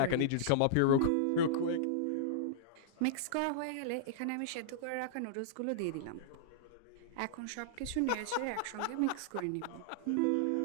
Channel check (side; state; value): both; different; correlation -0.02